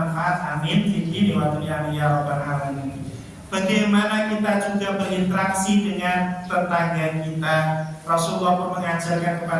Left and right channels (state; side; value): identical; both; correlation 1.00